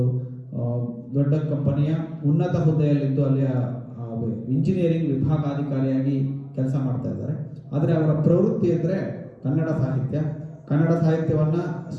ದೊಡ್ಡ ಕಂಪನಿಯ ಉನ್ನತ ಹುದ್ದೆಯಲ್ಲಿದ್ದು ಅಲ್ಲಿಯ ಇಂಜಿನಿಯರಿಂಗ್ ವಿಭಾಗಾಧಿಕಾರಿಯಾಗಿ ಕೆಲಸ ಮಾಡ್ತಾ ಇದ್ದಾರೆ. ಆದರೆ ಅವರ ಪ್ರವೃತ್ತಿ ಅಂದರೆ ಕನ್ನಡ ಸಾಹಿತ್ಯವನ್ನು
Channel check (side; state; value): both; identical; correlation 1.00